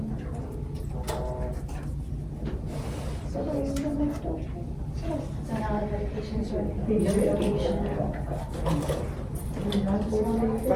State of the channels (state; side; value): identical; both; correlation 1.00